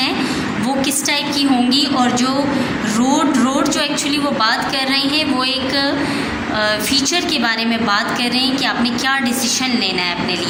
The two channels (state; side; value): identical; both; correlation 1.00